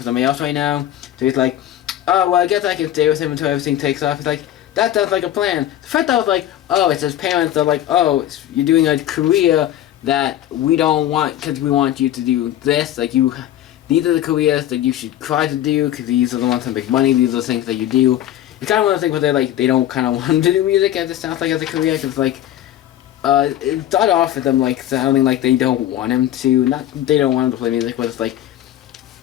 somebody else right now. So he's like, oh, well, I guess I can stay with him until everything takes off. He's like, that sounds like a plan. The first I was like, oh, it's his parents. They're like, oh, you're doing a career that we don't want because we want you to do this. Like, these are the careers that you should try to do because these are the ones that make money. These are the things that you do. It's kind of one of the things where they don't kind of want him to do music as it sounds like as a career because, like, it started off with them, like, sounding like they don't want him to, not they don't want him to play music, but it's like,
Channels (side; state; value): right; quieter; 12.2 dB